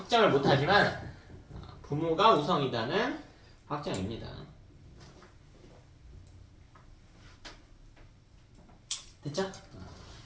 못하지만 부모가 우성이다는 확정입니다. 됐죠?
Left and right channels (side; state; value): both; identical; correlation 1.00